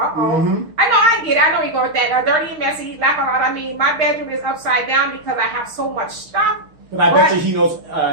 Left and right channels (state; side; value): late; left; 6.5 ms